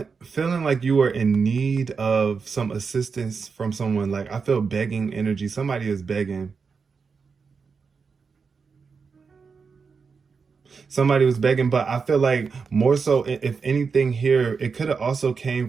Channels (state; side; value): quieter; left; 5.3 dB